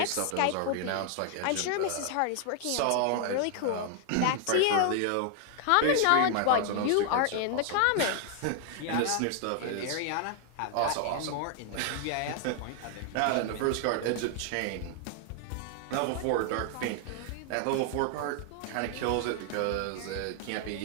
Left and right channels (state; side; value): different; both; correlation 0.00